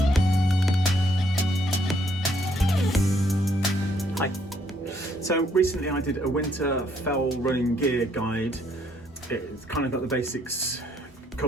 Hi. So recently I did a winter fell running gear guide. It's kind of got the basics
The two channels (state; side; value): normal; both; correlation 0.69